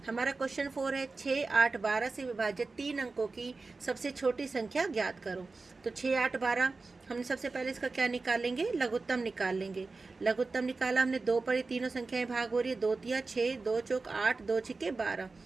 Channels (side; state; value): left; quieter; 3.8 dB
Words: हमारा क्वेश्चन 4 है, 6, 8, 12 से विभाजित 3 अंकों की सबसे छोटी संख्या ज्ञात करो। तो 6, 8, 12 हमने सबसे पहले इसका क्या निकालेंगे? लघुत्तम निकाल लेंगे। लघुत्तम निकाला हमने, 2 पर ये तीनों संख्याएं भाग हो रही है, 2 तिया 6, 2 चौक 8, 2 छिके 12।